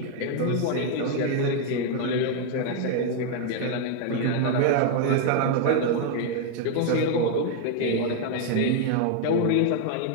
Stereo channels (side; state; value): both; different; correlation 0.00